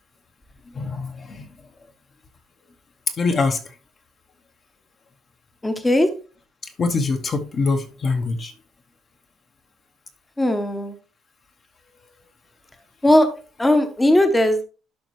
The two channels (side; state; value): both; normal; correlation 0.90